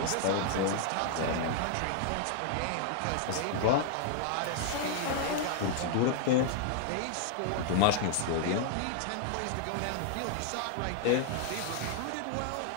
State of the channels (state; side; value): different; both; correlation 0.00